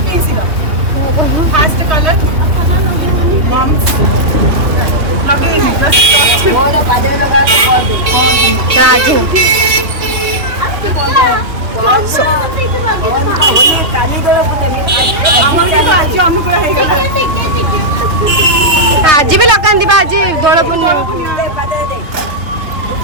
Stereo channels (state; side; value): late; left; 3.0 ms